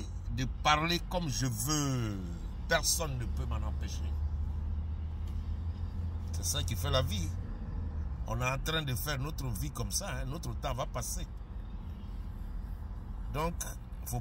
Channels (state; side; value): identical; both; correlation 1.00